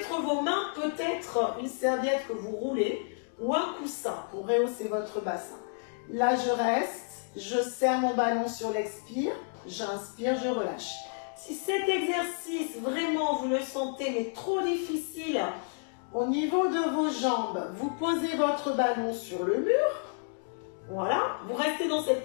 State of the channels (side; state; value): right; silent; 57 dB below the other